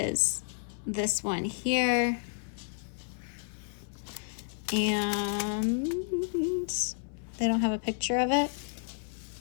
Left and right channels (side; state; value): right; silent; 57 dB below the other